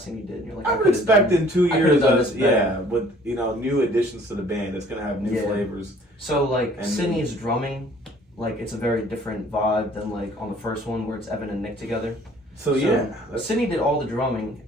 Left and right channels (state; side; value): normal; both; correlation 0.55